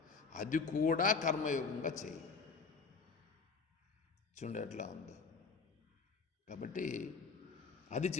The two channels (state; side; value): quieter; right; 4.8 dB